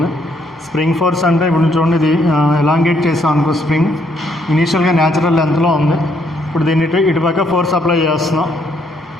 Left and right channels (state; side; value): normal; both; correlation 0.71